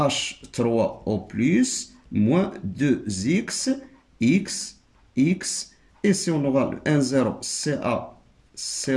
moins 2X, X, X, et si on aura le N0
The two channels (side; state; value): both; identical; correlation 1.00